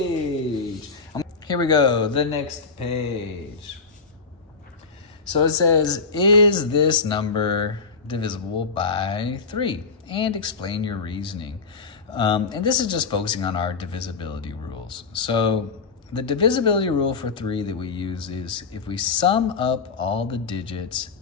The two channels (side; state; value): right; quieter; 4.7 dB